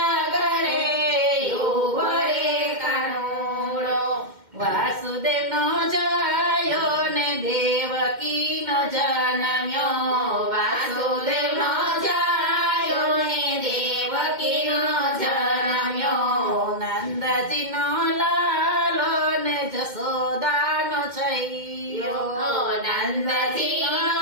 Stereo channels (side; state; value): left; late; 2.1 ms